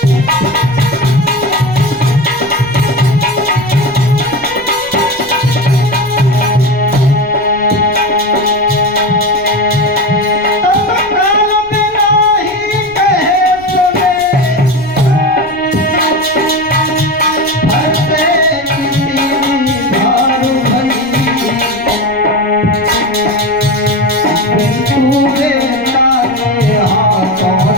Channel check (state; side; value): noise; left; rumble, 25 dB below the sound